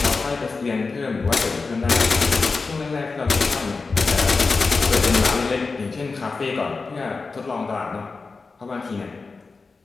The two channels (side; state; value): right; quieter; 4.2 dB